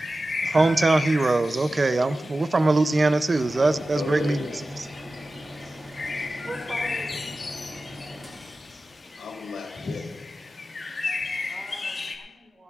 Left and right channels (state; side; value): normal; both; correlation 0.95